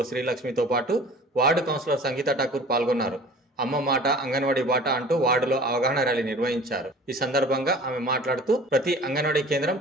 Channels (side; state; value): both; normal; correlation 0.45